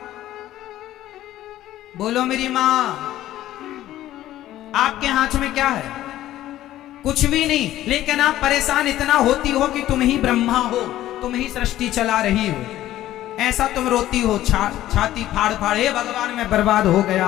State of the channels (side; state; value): right; quieter; 13.9 dB